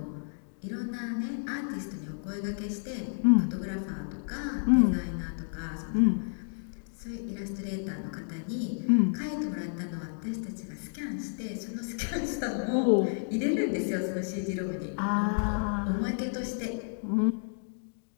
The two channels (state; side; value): silent; right; digital silence